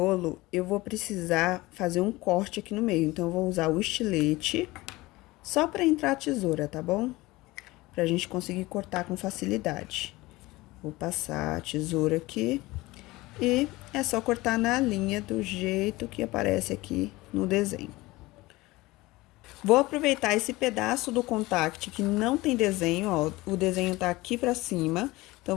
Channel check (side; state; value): right; quieter; 20.3 dB